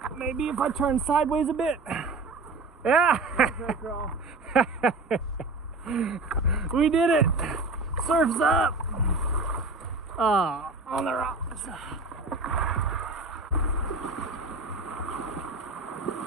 Maybe if I turn sideways a bit. Yeah. We did it. Surf's up. On the rocks.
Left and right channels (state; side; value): quieter; left; 3.5 dB